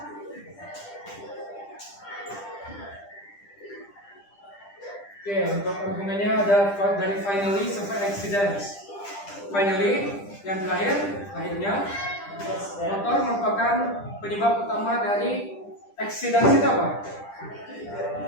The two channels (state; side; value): late; right; 10 ms